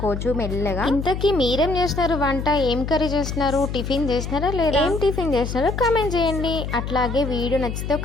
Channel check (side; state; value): left; noise; hum, 5 dB below the sound